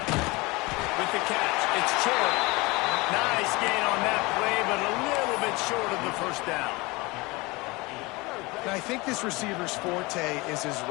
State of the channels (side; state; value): right; quieter; 23.9 dB